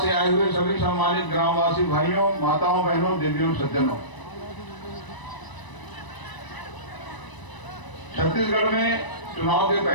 से आए हुए सभी सम्मानित ग्रामवासी भाइयों, माताओं, बहनों, देवियों, सज्जनों। छत्तीसगढ़ में चुनाव के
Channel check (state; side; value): late; right; 1.0 ms